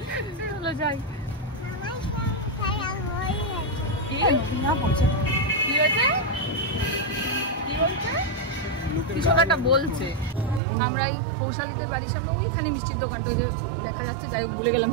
চলো যাই। কি হয়েছে? কিছু একটা বলছে। আমরা এই কৌশালীদের বাড়ির সামনে ওইখানে মিষ্টির দোকানটা দেখা যাচ্ছে, যাই হোক ভুলে গেলাম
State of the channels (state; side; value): drops out; left; at 10.6 s